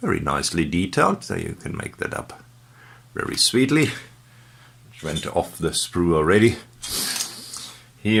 very nicely detailed, so you can make that up very sweetly. Which went off the sprue already.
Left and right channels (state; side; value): identical; both; correlation 1.00